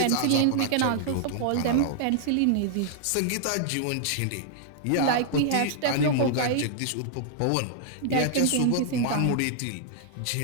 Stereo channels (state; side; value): different; both; correlation -0.01